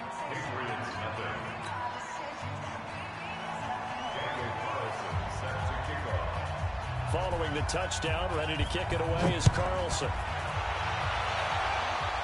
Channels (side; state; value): both; identical; correlation 1.00